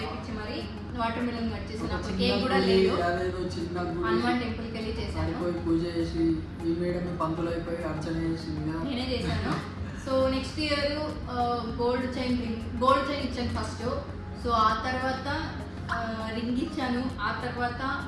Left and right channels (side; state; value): both; identical; correlation 1.00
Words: మరి వాటర్ మిలన్ కట్ చేశాను. అప్పుడు కేక్ కూడా లేదు, హనుమాన్ టెంపుల్కి వెళ్ళి చేశాను, పూజ చేసి నేనే చేశాను. So next year gold chain ఇచ్చాను ఫస్ట్. సో ఆ తర్వాత రింగ్ ఇచ్చాను, ఆ తర్వాత